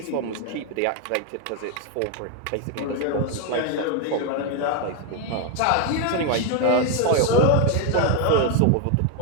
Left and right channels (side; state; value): both; different; correlation 0.01